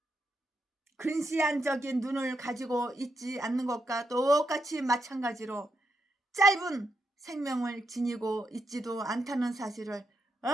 근시안적인 눈을 가지고 있지 않는 것과 똑같이 마찬가지로 짧은 생명을 지니고 있지도 않다는 사실을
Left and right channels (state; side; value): normal; both; correlation 0.83